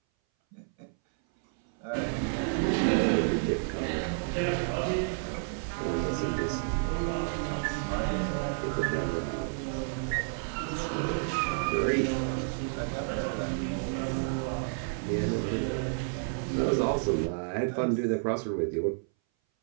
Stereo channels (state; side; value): silent; left; 58 dB below the other